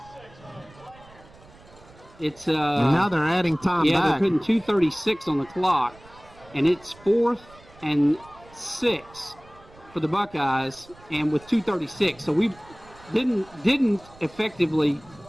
It's and now they're adding time back. They're putting 2:36 on the clock, and it's 4th and 6 for the Buckeyes, and with 2:36, so we didn't effectively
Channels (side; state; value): right; noise; rumble, 24 dB below the sound